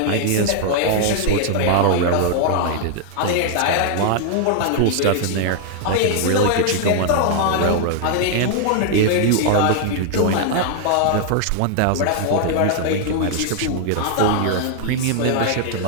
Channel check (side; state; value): both; different; correlation 0.00